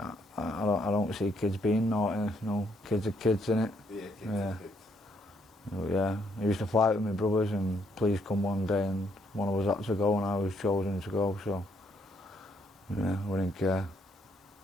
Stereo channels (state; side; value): normal; both; correlation 0.71